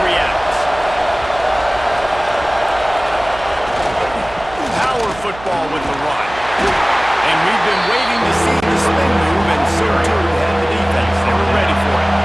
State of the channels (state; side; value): noise; right; hum, 17 dB below the sound